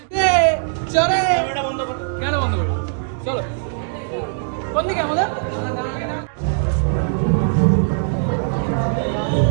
চলে, কেন বন্ধ করবো? চলো, কোন দিকে আমাদের?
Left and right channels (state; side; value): silent; left; digital silence